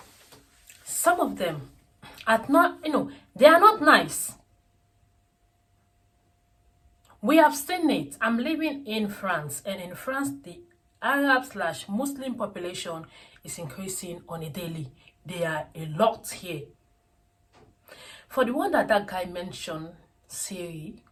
Some of them are not, they are not nice. We have seen it. I'm living in France, and in France, the Arab/Muslim population is increasing on a daily. There are a lot here. For the one that guy mentioned, Syria,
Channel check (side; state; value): both; identical; correlation 1.00